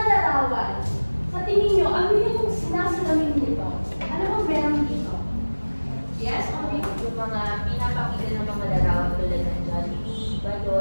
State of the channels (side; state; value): both; inverted; correlation -1.00